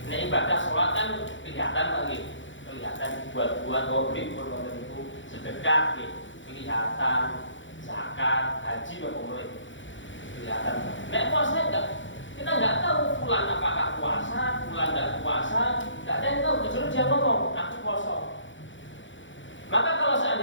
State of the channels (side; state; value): right; late; 0.55 ms